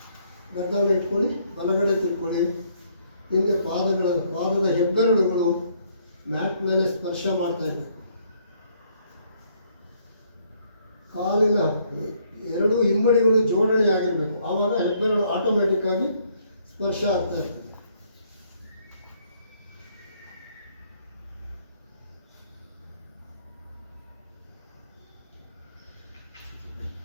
ಗದ್ದವನ್ನು ಇಟ್ಕೊಳ್ಳಿ. ಬಲಗಡೆ ತಿರ್ಕೊಳ್ಳಿ. ಹಿಂದೆ ಪಾದದ ಹೆಬ್ಬೆರಳುಗಳು ಮ್ಯಾಟ್ ಮೇಲೆ ಸ್ಪರ್ಶ ಮಾಡ್ತಾ ಇದೆ. ಕಾಲಿನ ಎರಡೂ ಹಿಮ್ಮಡಿಗಳು ಜೋಡಣೆ ಆಗಿರಬೇಕು. ಆವಾಗ ಹೆಬ್ಬೆರಳು ಆಟೋಮೆಟಿಕ್ ಆಗಿ ಸ್ಪರ್ಶ ಆಗ್ತಾ ಇರ್ತದೆ.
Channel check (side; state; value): both; inverted; correlation -0.68